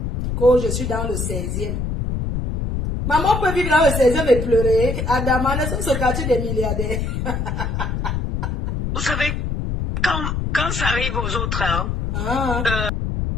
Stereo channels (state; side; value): noise; left; rumble, 2 dB below the sound